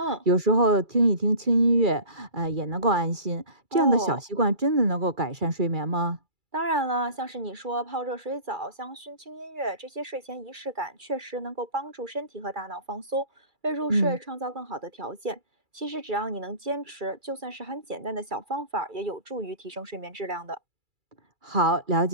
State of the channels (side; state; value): left; late; 2.3 ms